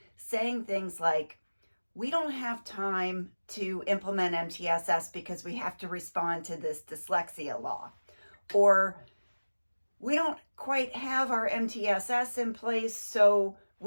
saying things like, we don't have time to implement MTSS because we have to respond to this dyslexia law. Or we don't quite have our MTSS in place, so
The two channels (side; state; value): both; inverted; correlation -1.00